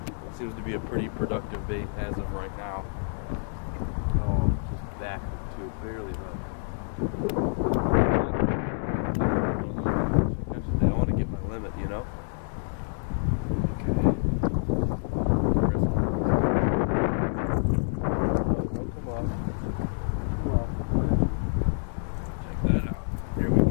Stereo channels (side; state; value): right; silent; digital silence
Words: It seems to be a pretty productive bait as of right now. Oh, just back to it, barely run. I want to get my limit, you know?